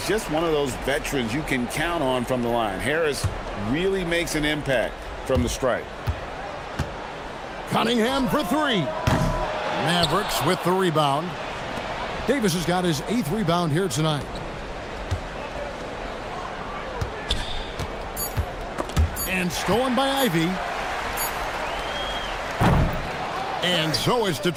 just one of those veterans you can count on from the line. Harris really makes an impact from the stripe. Cunningham for three. Mavericks with the rebound. Davis has got his 8th rebound here tonight. And stolen by Ivy. And so is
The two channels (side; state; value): both; identical; correlation 1.00